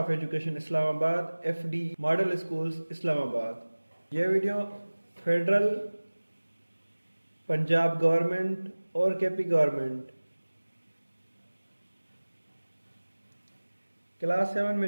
Education Islamabad FD Model Schools Islamabad. यह video federal Punjab government और KP government class 7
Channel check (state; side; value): inverted; both; correlation -1.00